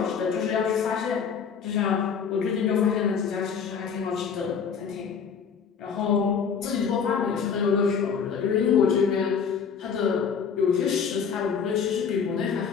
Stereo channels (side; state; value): right; quieter; 6.5 dB